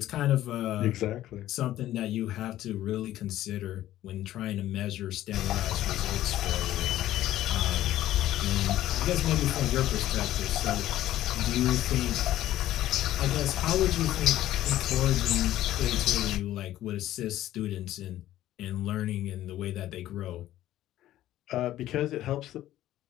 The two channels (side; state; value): right; quieter; 13.8 dB